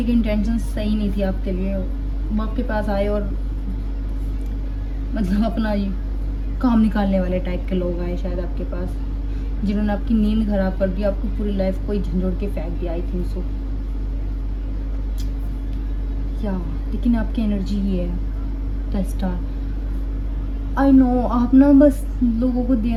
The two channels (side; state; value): both; identical; correlation 1.00